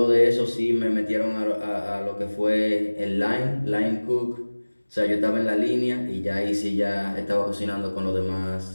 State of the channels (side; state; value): both; inverted; correlation -1.00